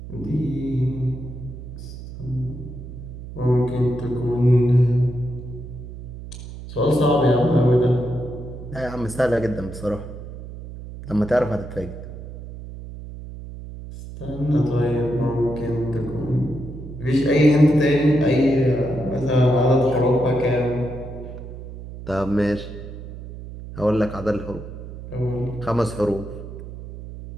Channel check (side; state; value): right; noise; hum, 12 dB below the sound